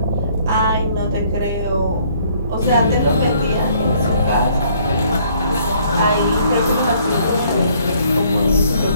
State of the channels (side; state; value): both; inverted; correlation -0.63